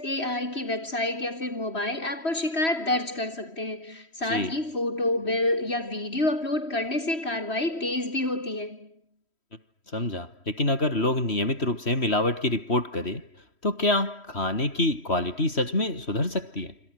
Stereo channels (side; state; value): right; late; 3.1 ms